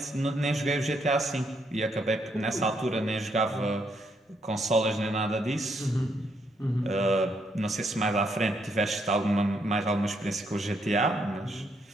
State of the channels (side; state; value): both; normal; correlation 0.75